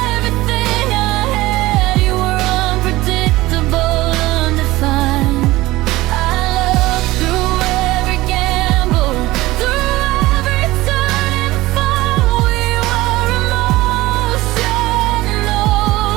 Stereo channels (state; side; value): quieter; left; 18.5 dB